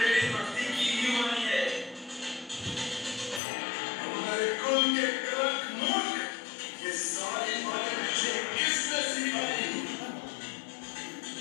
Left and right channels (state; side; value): drops out; right; at 3.4 s